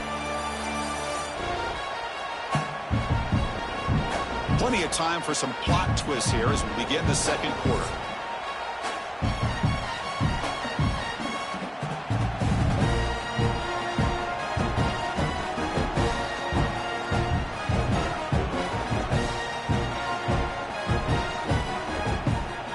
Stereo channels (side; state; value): both; identical; correlation 1.00